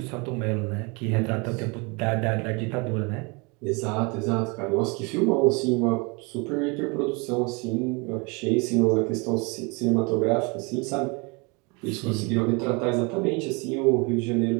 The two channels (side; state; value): left; quieter; 29.8 dB